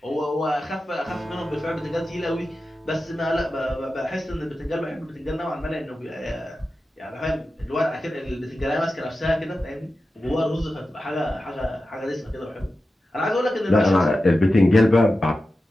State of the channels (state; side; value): normal; both; correlation 0.92